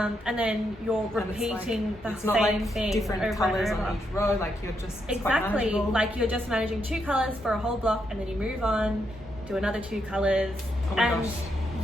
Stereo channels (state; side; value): normal; both; correlation 0.80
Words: then you're repeating the same thing different over colours and over. on each row, like you're just exactly like you're just managing 2 colours for a whole block, and then you move on, do another 2 colours. Oh my gosh.